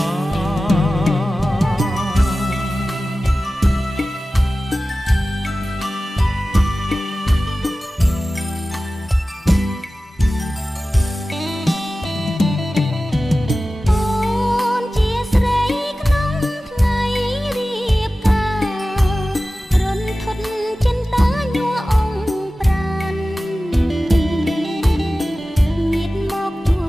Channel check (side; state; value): both; normal; correlation 0.96